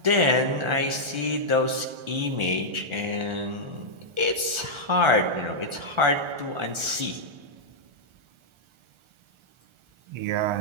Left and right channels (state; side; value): late; left; 1.4 ms